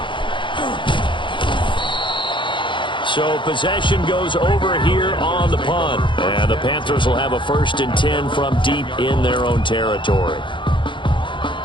So possession goes over here on the punt. And the Panthers will have a 1st and 10 from deep in their own territory.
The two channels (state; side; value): late; right; 0.23 ms